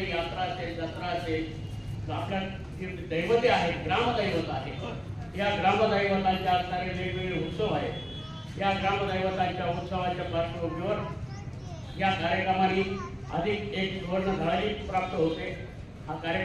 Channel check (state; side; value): identical; both; correlation 1.00